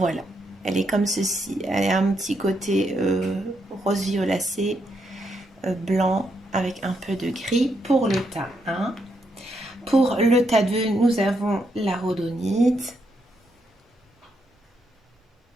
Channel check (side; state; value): both; normal; correlation 0.79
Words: elle est comme ceci. Elle a un petit côté rose violacé, blanc avec un peu de gris pour le tas 1. Pour le tas 2, nous avons la rhodonite.